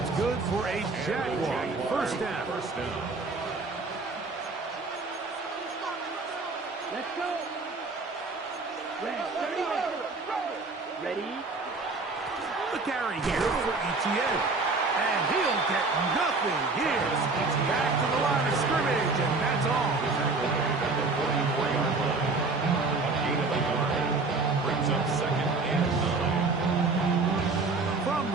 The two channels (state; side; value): quieter; left; 3.8 dB